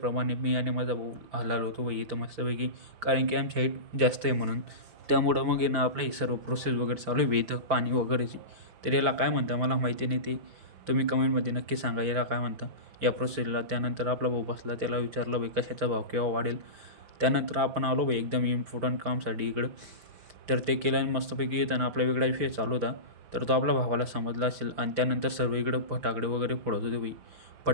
मी आणि माझा भाऊ हलाल होतो बाई इथं मस्तपैकी, कारण की आमची हाईट जास्त आहे म्हणून. त्यामुळं मग आहे ना आपलं हे सर्व प्रोसेस वगैरे चालू आहे बाई इथं पाणी वगैरेची. तर याला काय म्हणता मला माहिती नाही, ते तुम्ही कमेंटमध्ये नक्की सांगा याला काय म्हणता या प्रोसेसला. त्यानंतर आपला भाऊ बसला, त्याला विचारलं बाई कशाचा भाव केव्हा वाढेल. त्यानंतर आपण आलो बाई एकदम इम्पॉर्टंट कामसाठी इकडं. तर ते केलं आणि मस्तपैकी येताना आपला वेगळा विषय चालू होता. तर तो आपल्या भावाला समजला असेल आणि त्यानंतर सर्व इकडं फटाकडे वगैरे फोडत होते बाई.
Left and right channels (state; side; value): late; left; 5.2 ms